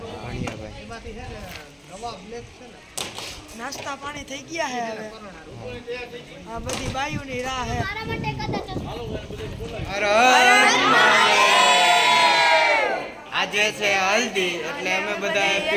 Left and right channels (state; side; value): identical; both; correlation 1.00